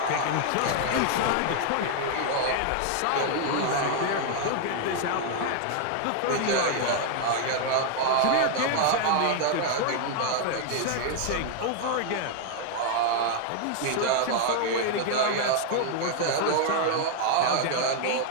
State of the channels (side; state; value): both; different; correlation 0.00